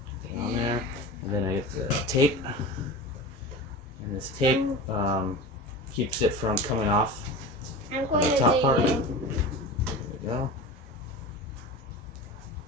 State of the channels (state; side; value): normal; both; correlation 0.31